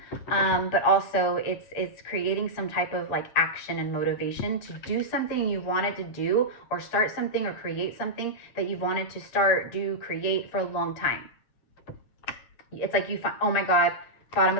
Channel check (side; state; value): right; late; 8.1 ms